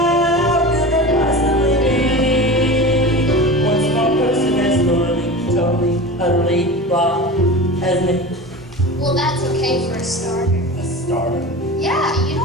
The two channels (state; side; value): normal; both; correlation 0.31